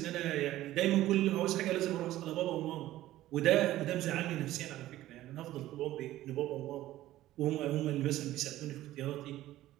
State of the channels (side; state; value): left; quieter; 14.9 dB